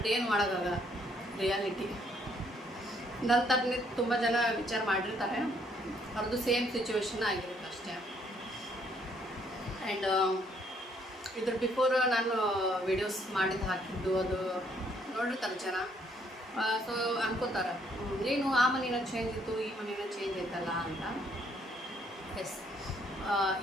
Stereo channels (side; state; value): both; normal; correlation 0.68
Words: ಏನು ಮಾಡೋಕ್ಕಾಗಲ್ಲ, ರಿಯಾಲಿಟಿ. ನನ್ನ ಥರನೇ ತುಂಬ ಜನ ವಿಚಾರ ಮಾಡಿರ್ತಾರೆ, ಅವ್ರದ್ದು ಸೇಮ್ ಸಿಚುವೇಶನ್ ಆಗಿರುತ್ತೆ ಅಷ್ಟೇ. ಆ್ಯಂಡ್ ಇದ್ರ ಬಿಫೋರ್ ನಾನು ವಿಡಿಯೋಸ್ ಮಾಡಿದ್ದು ಹಾಕಿದ್ದು ಅದು ನೋಡಿರ್ತಾರೆ ಜನ. ಸೊ ಅನ್ಕೋತಾರೆ, ಏನು ಆ ಮನೇನ ಚೇಂಜ್ ಇತ್ತು, ಈ ಮನೇನ ಚೇಂಜ್ ಐತಲ್ಲ ಅಂತ. ಎಸ್,